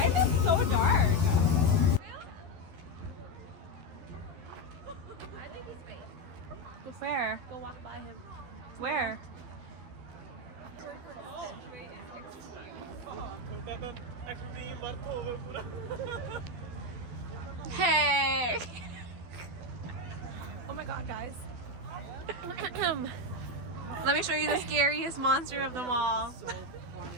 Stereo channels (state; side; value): late; left; 12 ms